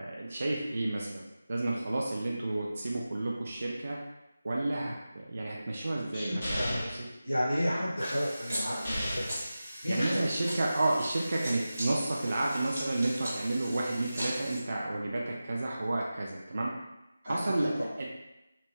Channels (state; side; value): inverted; both; correlation -0.95